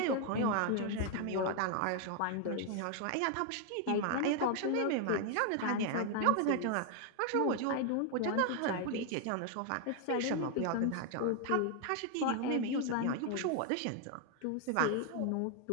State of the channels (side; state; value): both; different; correlation 0.00